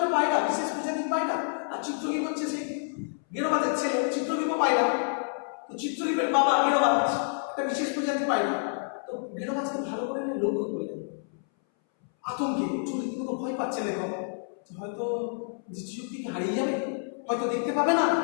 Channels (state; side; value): silent; right; 59 dB below the other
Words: পায়রা, বিশেষ প্রজাতির পায়রা, আর চিত্রশিল্প হচ্ছে সেই গেরোবাজের ছেলে, চিত্রশিল্প পায়রা। তো চিত্রশিল্পের বাবা গেরোবাজ একটা বিশেষ প্রজাতির পায়রা। তো গেরোবাজকে ভালো করে এনে লক্ষ্য করলেন, আতঙ্কে রীতিমতো ভয় পাচ্ছে লেখক যে হয়তো দৃষ্টিশক্তি কি হারিয়ে যাবে, হয়তো দেখতে পাবে না,